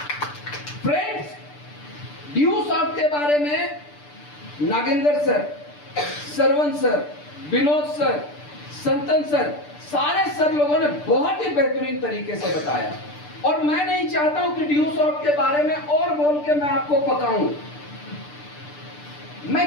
फ्रेंड्स, ड्यू सॉफ्ट के बारे में Nagendra sir, Saravan sir, Vinod sir, Santhan sir, सारे सर लोगों ने बहुत ही बेहतरीन तरीके से बताया। और मैं नहीं चाहता हूं कि ड्यू सॉफ्ट के बारे में और बोल के मैं आपको पकाऊं।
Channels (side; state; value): right; late; 6.8 ms